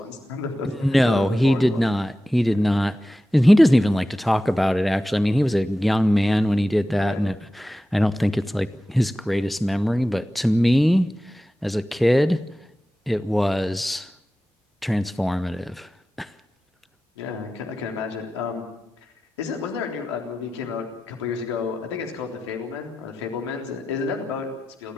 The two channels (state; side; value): normal; both; correlation 0.94